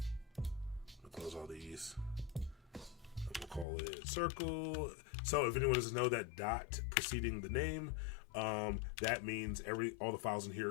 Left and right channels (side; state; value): right; drops out; at 3.7 s